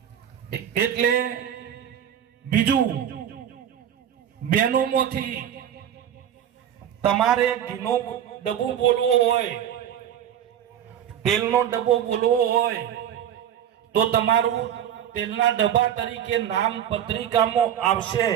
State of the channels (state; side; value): quieter; left; 10.0 dB